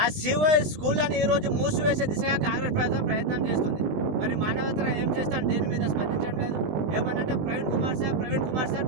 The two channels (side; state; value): left; late; 20 ms